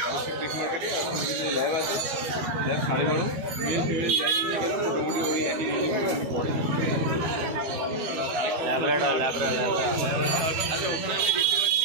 ফিশ মার্কেটে। এখন যে ল্যাব আছে, ল্যাব 12:30, মেল ফিমেল যাই নিয়ে গেলাম মোটামুটি ওই একই পড়ে ল্যাব্রাডর। আচ্ছা, ওখানে আমি দেখতে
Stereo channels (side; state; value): left; late; 13 ms